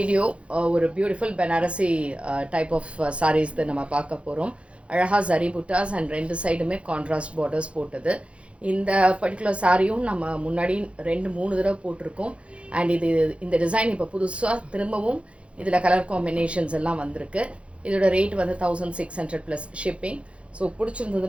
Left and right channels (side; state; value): left; late; 0.060 ms